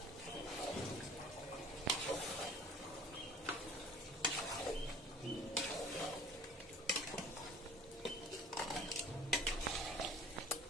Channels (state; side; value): normal; both; correlation 0.46